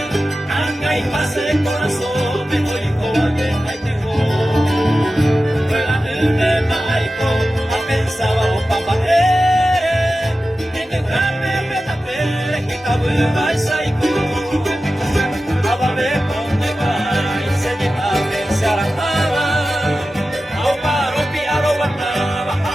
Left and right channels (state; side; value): normal; both; correlation 0.94